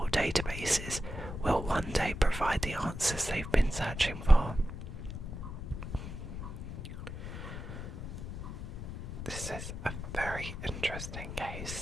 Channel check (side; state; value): left; noise; rumble, 7 dB below the sound